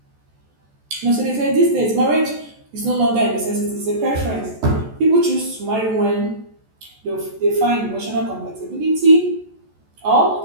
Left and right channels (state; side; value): late; left; 14 ms